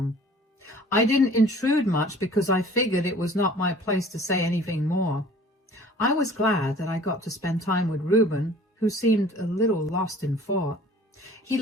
I didn't intrude much because I figured it was not my place to say anything more. I was glad that I got to spend time with Reuben, who seemed a little lost in thought. He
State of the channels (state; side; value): normal; both; correlation 0.49